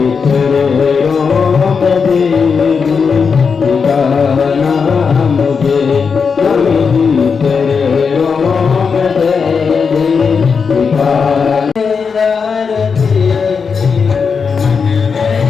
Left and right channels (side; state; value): right; quieter; 5.7 dB